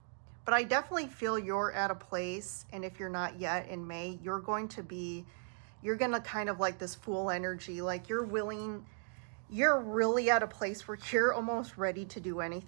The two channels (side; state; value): left; silent; 53 dB below the other